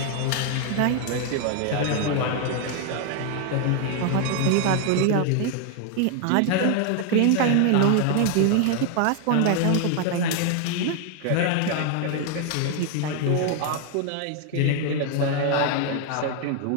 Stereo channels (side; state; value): both; different; correlation 0.00